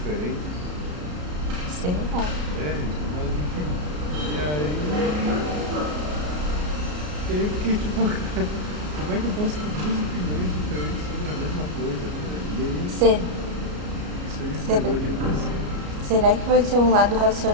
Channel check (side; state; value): left; late; 33 ms